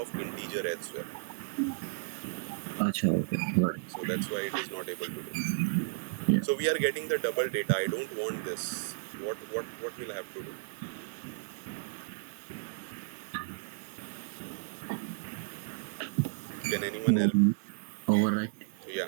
integer as well. Achha, okay. Got it. So that's why it is not able to do. Yeah. So we are getting the double data. I don't want this. What will I have to do? Can anyone help? Overwrite.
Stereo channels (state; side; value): silent; left; 55 dB below the other